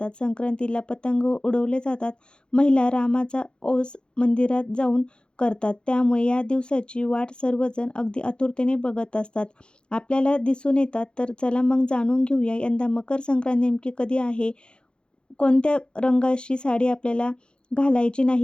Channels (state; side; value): late; right; 0.052 ms